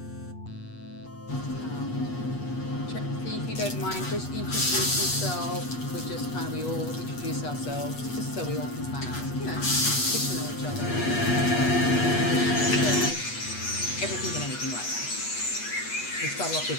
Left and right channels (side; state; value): right; late; 8.3 ms